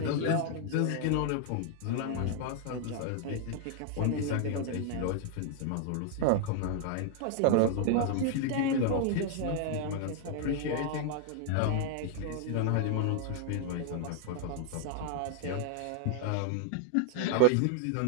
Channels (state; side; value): different; both; correlation 0.00